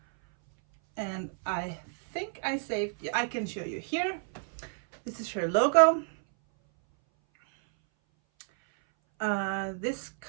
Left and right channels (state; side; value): silent; left; 58 dB below the other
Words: And I think I can show you here. This is her logo. This